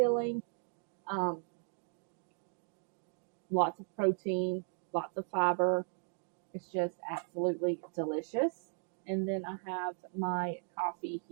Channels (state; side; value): silent; left; digital silence